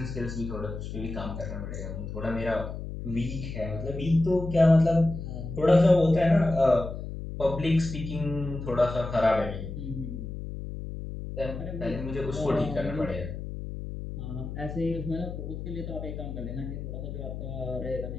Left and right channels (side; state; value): left; noise; hum, 7 dB below the sound